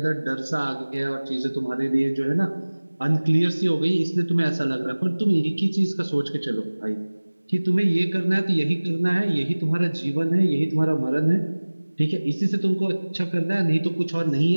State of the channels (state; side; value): inverted; both; correlation -1.00